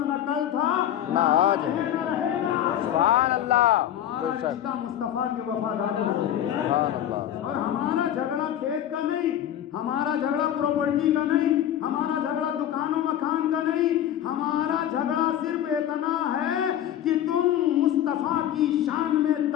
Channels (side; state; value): right; quieter; 11.0 dB